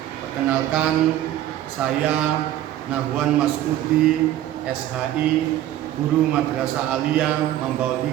Perkenalkan, saya Nahwan Masudi, SHI, Guru Madrasah Aliyah Mambaul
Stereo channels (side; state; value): left; quieter; 12.9 dB